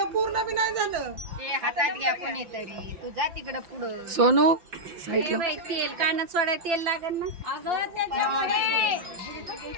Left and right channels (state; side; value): late; left; 5.8 ms